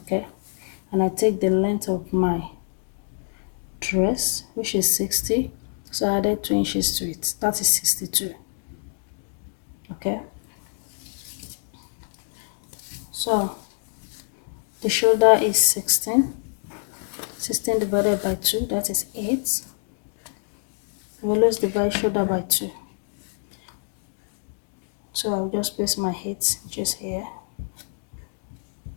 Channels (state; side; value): silent; right; 61 dB below the other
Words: and I take the length of my dress, which is 60, so I added 2 inches to it, that is 62. Okay, so the shoulder is 16 divided by 2, that is 8. We always divide shoulder by 2, so I'll just place my 8 just here.